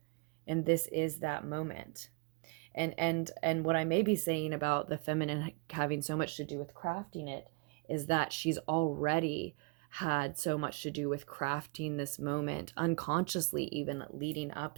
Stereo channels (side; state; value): left; quieter; 31.2 dB